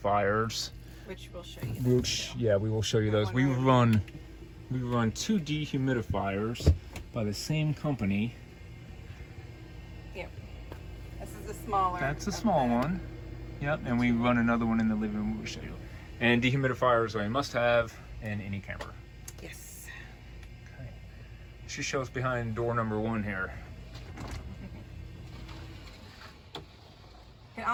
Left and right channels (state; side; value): identical; both; correlation 1.00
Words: Which we'll show you. Yeah, we will show you those. We run 2 dehumidifiers by the same company. Yep. This is a smaller. That's a small one. Yep, and we run another one in the living room. We'll show you. And dehumidifiers are a must-have in any camper. Yes. Okay. She shows behind door number 1 here. I can